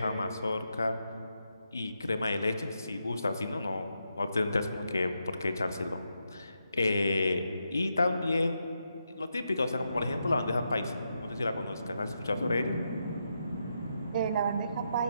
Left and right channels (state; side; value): inverted; both; correlation -0.83